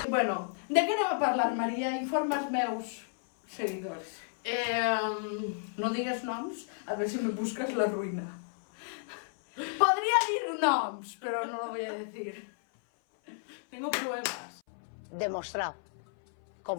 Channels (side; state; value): right; silent; 56 dB below the other